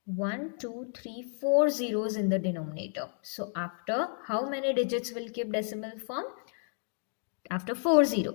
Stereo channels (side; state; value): right; silent; 57 dB below the other